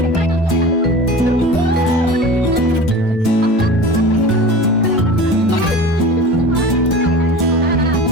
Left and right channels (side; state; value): both; normal; correlation 0.35